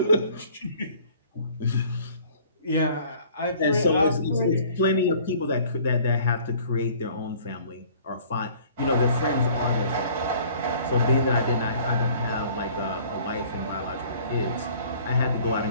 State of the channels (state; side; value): inverted; both; correlation -0.53